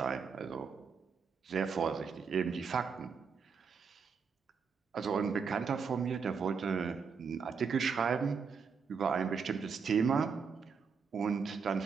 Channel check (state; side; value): quieter; left; 5.8 dB